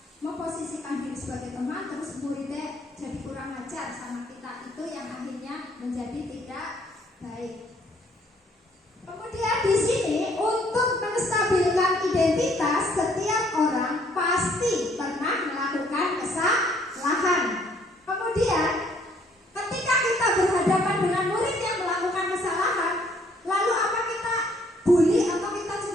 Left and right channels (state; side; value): normal; both; correlation 0.64